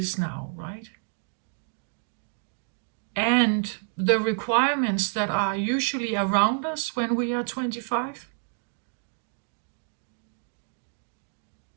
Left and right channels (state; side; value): silent; left; digital silence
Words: now, right? And the requirements that are usually around us when we are 25.